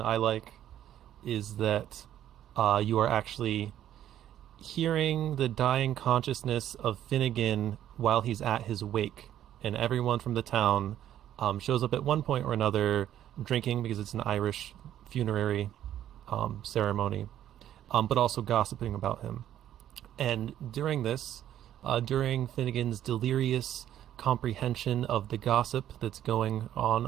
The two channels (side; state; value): left; quieter; 11.4 dB